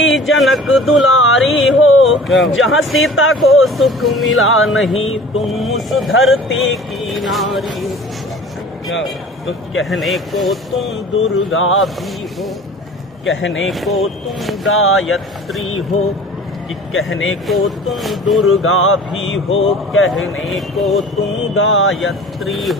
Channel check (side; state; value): both; normal; correlation 0.44